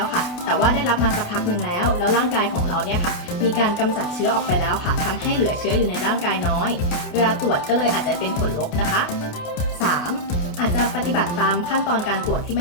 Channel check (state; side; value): late; right; 28 ms